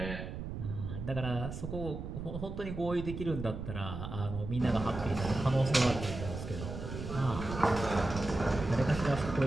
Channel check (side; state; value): right; noise; rumble, 7 dB below the sound